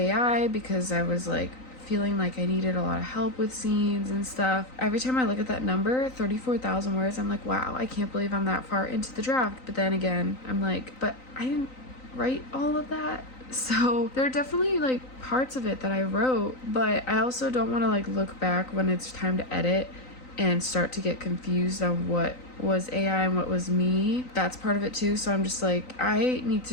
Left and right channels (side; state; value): right; late; 3.9 ms